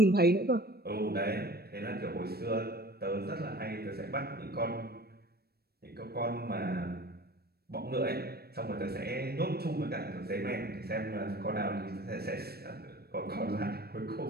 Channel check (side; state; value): left; late; 0.46 ms